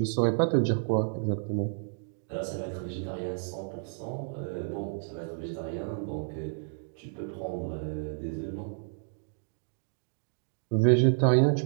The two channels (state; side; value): silent; left; digital silence